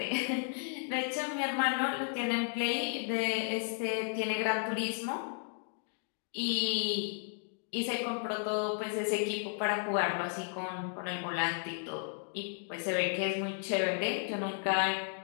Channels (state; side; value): silent; right; 55 dB below the other